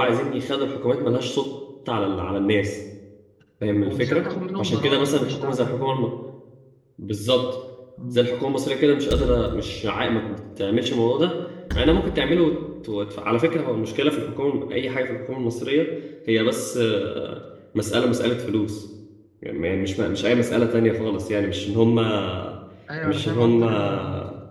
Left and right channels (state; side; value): identical; both; correlation 1.00